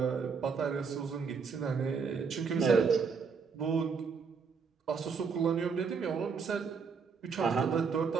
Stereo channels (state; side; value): quieter; left; 5.6 dB